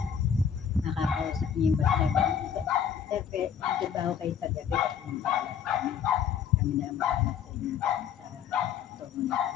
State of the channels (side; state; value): right; quieter; 8.0 dB